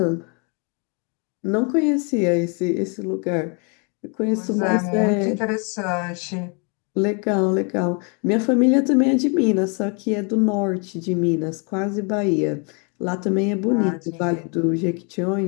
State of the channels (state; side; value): quieter; right; 35.5 dB